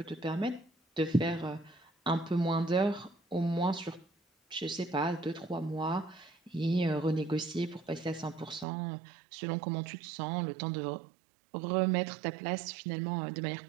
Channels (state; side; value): drops out; left; at 8.7 s